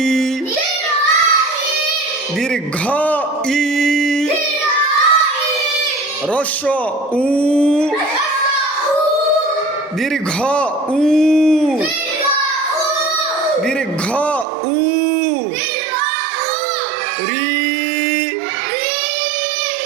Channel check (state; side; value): drops out; left; at 14.5 s